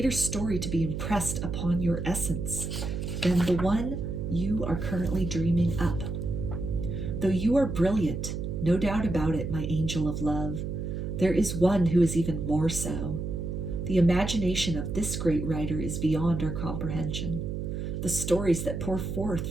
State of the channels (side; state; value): right; noise; hum, 4 dB below the sound